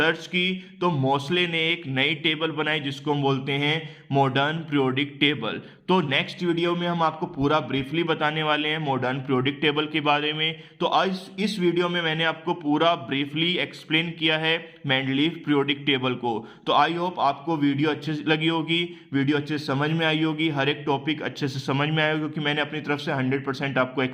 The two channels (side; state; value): both; identical; correlation 1.00